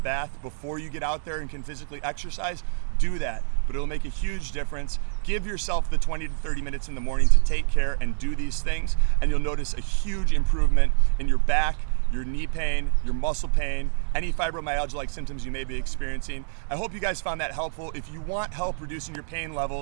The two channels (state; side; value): silent; left; digital silence